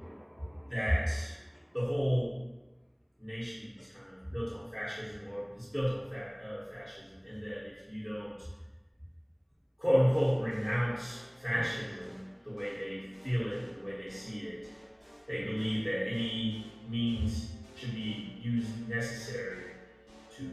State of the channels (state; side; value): identical; both; correlation 1.00